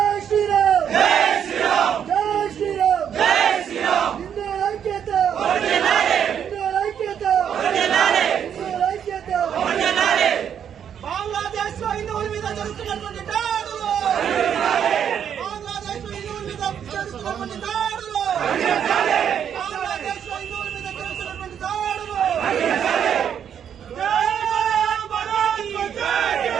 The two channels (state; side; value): quieter; left; 8.6 dB